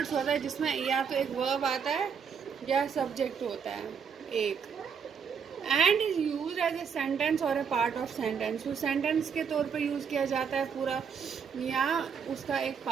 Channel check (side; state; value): left; quieter; 6.6 dB